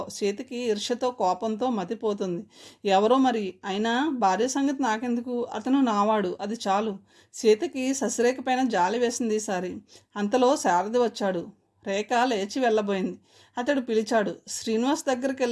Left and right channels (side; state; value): both; identical; correlation 1.00